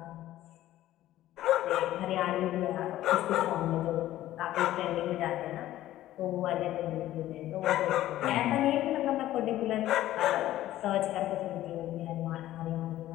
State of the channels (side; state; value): right; quieter; 14.2 dB